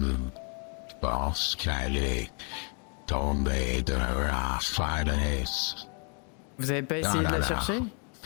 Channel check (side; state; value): right; quieter; 37.8 dB